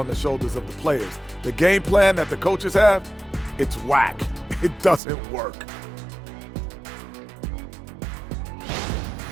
the shoulders of the players, the game plan that the coaches have, it's whack. It doesn't work.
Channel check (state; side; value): drops out; left; at 5.0 s